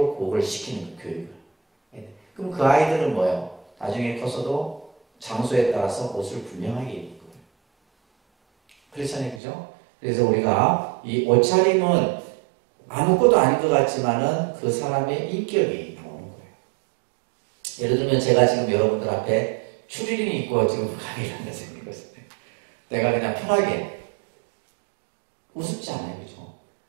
그걸 시키는 교육을. 그럼 그 아이들은 뭐예요? 나중에 커서도 장소에 따라서 옷을 분명하게 입을 거예요. 그렇잖아요, 그죠? 그래서 우리가 이 옷차림은 아무것도 아닌 것 같지만은 그 사람의 인격이 나오는 거예요. 예를 들면 제가 지금 여러분들 앞에 추리닝 입고 지금 강의를 한다 생각해보세요. 내가 그냥 편하게 우습지 않아요, 그죠?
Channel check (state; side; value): drops out; left; at 9.4 s